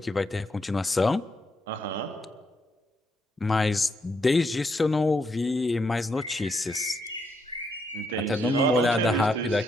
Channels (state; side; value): normal; both; correlation 0.78